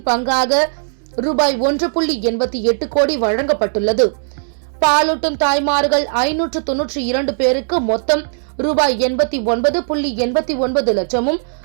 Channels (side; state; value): left; silent; 68 dB below the other